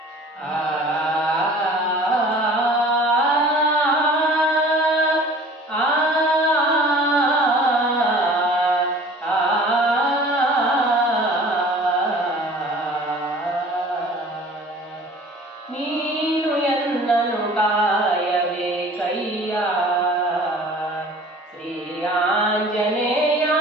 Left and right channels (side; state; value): both; normal; correlation 0.46